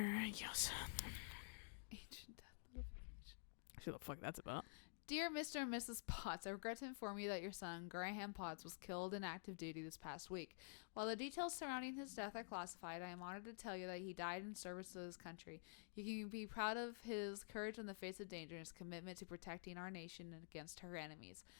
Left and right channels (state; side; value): silent; right; digital silence